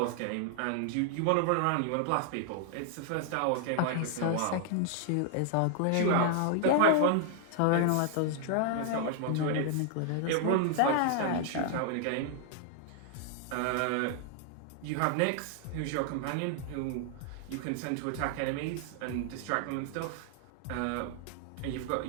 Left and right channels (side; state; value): both; different; correlation 0.00